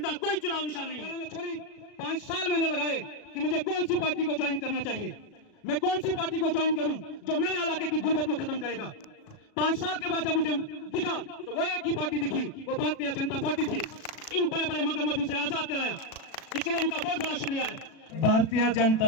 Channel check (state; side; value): late; right; 36 ms